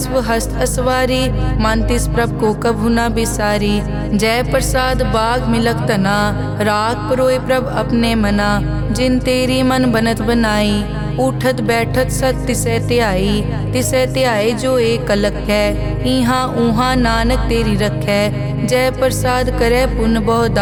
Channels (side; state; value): both; identical; correlation 1.00